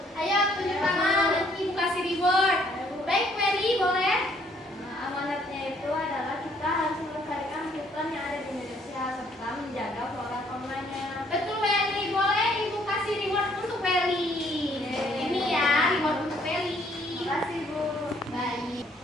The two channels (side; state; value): both; normal; correlation 0.65